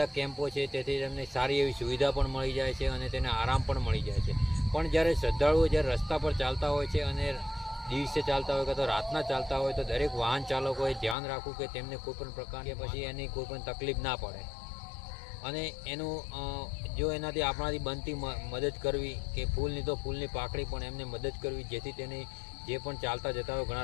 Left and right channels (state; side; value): drops out; right; at 11.2 s